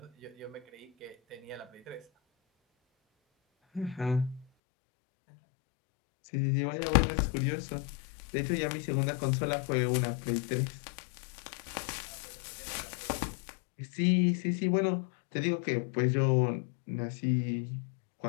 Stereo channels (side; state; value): right; drops out; at 4.5 s